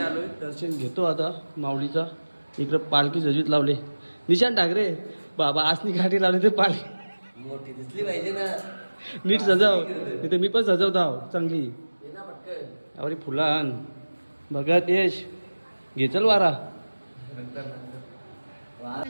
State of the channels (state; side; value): inverted; both; correlation -1.00